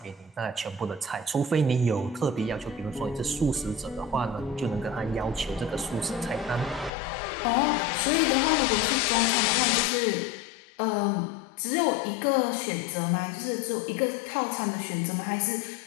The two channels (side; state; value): right; drops out; at 6.9 s